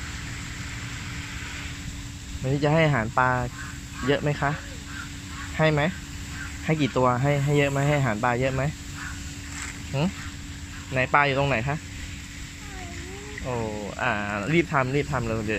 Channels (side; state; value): both; identical; correlation 1.00